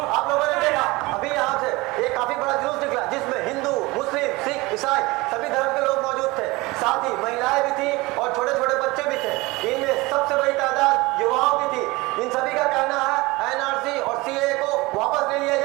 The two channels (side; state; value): left; quieter; 22.4 dB